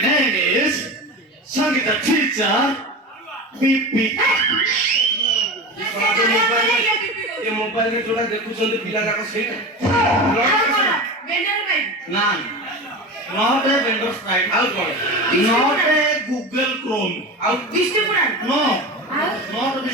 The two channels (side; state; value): both; normal; correlation 0.28